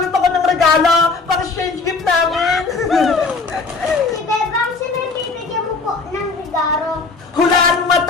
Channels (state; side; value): quieter; right; 4.2 dB